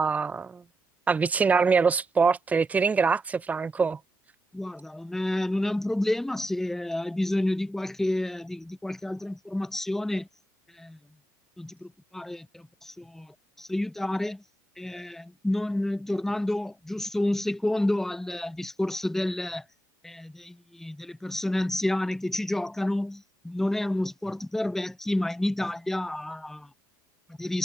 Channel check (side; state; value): both; normal; correlation 0.89